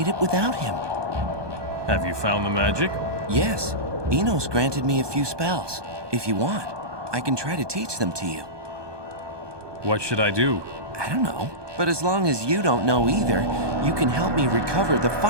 it without him. Have you found the magic? Yes. Enos granted me a few spells. If you want, I can try to teach them to you. What should I do? I don't know. But as long as you don't know either, you can help me recover the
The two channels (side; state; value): left; late; 1.2 ms